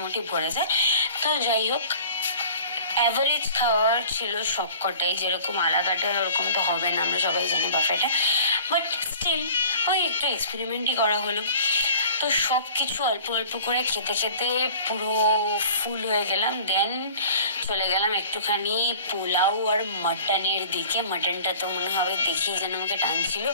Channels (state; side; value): inverted; both; correlation -0.45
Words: ভরে যায়। তো যাই হোক, অ্যাভারেজ খাওয়ার ছিল সবকটাই, যেরকম আলাকাটা ওরকম তো হবে না, আমরা সবাই জানি বাফেটা, বাট স্টিল ওই একটু এক্সপেরিমেন্টই করা হলো। তো সব কিছু অল্প অল্প করে খেতে খেতে পুরো ফুল হয়ে গেলাম। দেন চলে গেলাম একটুখানি পোলাও আর মাটনের দিকে। মাটনটা তো মনে হবে দেখেই যেন আমাকে টানছিল,